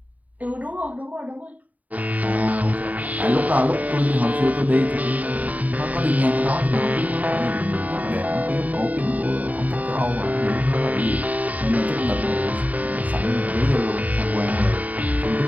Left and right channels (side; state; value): left; late; 0.073 ms